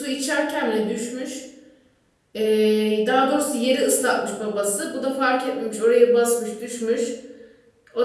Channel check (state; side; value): identical; both; correlation 1.00